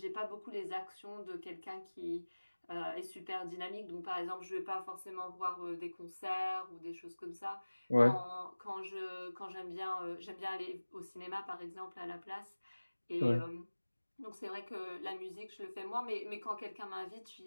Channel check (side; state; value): both; inverted; correlation -1.00